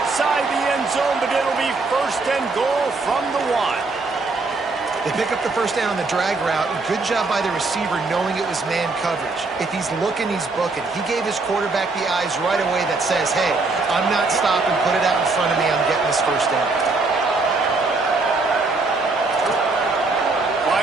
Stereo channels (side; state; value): left; quieter; 3.7 dB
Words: the end zone, but it'll be 1st and goal from the 1. They pick up the first down on the drag route. Good job by the receiver knowing it was man coverage. If he's looking, he's booking. He gave his quarterback the eyes right away that says, hey, I'm not stopping. Put it out in front of me. I'm getting this first down.